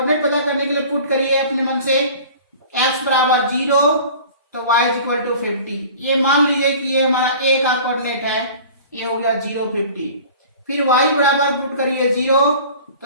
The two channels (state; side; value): inverted; both; correlation -0.43